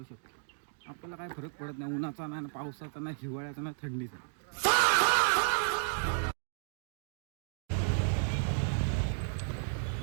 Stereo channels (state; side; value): silent; left; digital silence